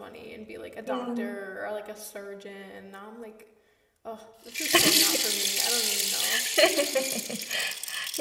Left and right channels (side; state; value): both; identical; correlation 1.00